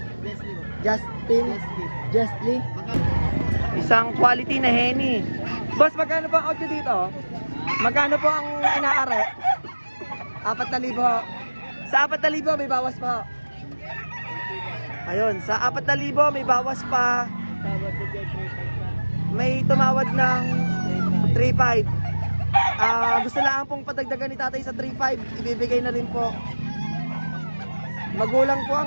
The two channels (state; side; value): inverted; both; correlation -1.00